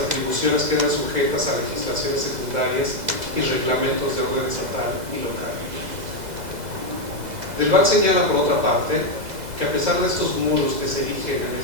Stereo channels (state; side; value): late; left; 2.0 ms